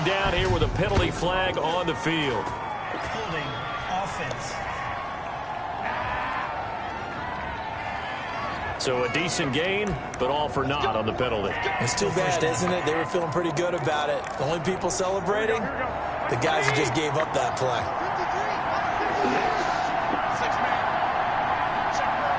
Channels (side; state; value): both; identical; correlation 1.00